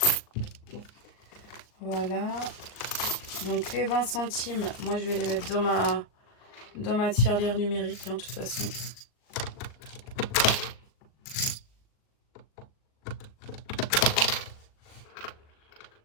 Voilà. Donc les 20 centimes, moi je vais les mettre dans ma tirelire numérique, hein, de toute façon.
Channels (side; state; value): right; late; 39 ms